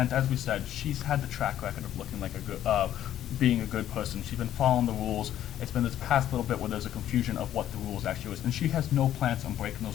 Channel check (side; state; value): right; quieter; 11.6 dB